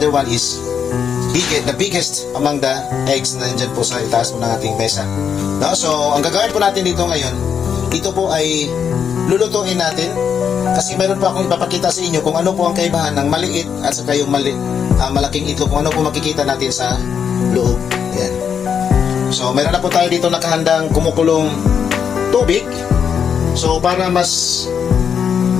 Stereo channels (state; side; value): quieter; right; 7.4 dB